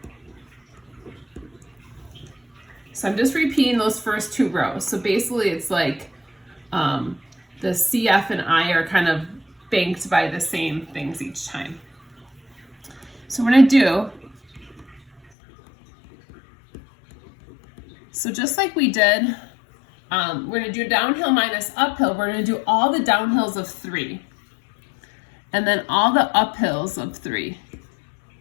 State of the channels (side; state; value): right; drops out; at 15.2 s